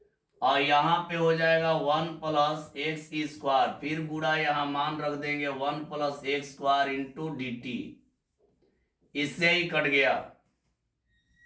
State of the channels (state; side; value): identical; both; correlation 1.00